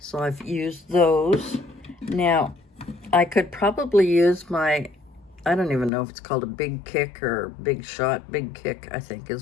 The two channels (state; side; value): drops out; right; at 5.9 s